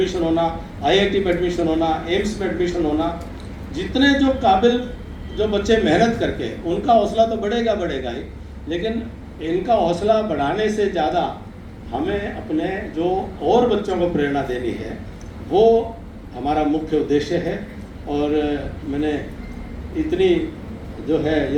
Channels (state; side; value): identical; both; correlation 1.00